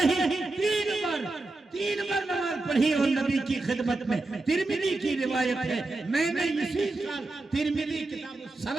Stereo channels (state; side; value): quieter; left; 3.1 dB